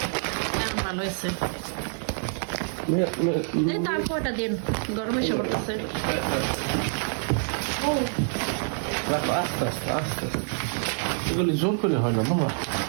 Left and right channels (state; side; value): silent; left; digital silence